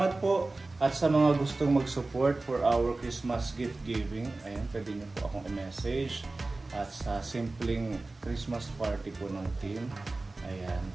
po at sa mga gustong mag-support for our Christmas gift giving. Ayan, pwede niyo po akong i-message. At sa simpleng Christmas party po ng team. Ayan.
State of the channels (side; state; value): left; quieter; 3.2 dB